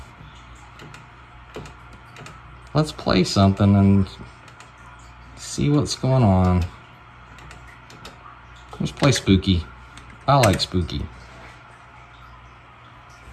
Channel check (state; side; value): identical; both; correlation 1.00